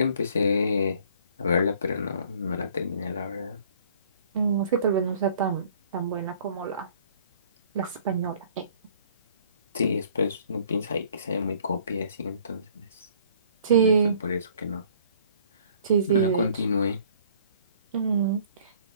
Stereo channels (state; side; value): inverted; both; correlation -0.56